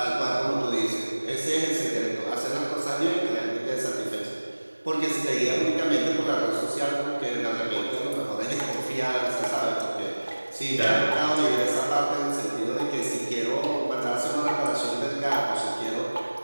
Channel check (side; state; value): both; inverted; correlation -1.00